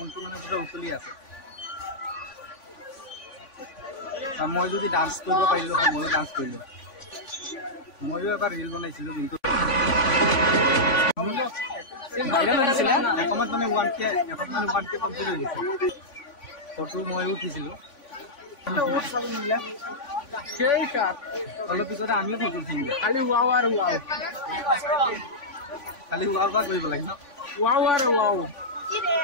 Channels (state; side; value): late; right; 3.5 ms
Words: মানে পুৰা উতলি আছে। মই যদি ডান্স কৰিব পাৰিলো হয় ময়ো ডান্স কৰিলো। ময়ো এবাৰ ৰিল বনাইছিলো কিন্তু ভাইৰেল হৈছিলে এসময়ত মানে 1K কমপ্লিট হৈ গৈছে। ফটো ময়ো উঠিছিলো। অলপ পিছতে আমিও ফটো উঠিম। খালি ৱাও আৰু ৱাও, খালি ৱাও বা কৰিব লাগে ন। ৱাও আৰু ৱাও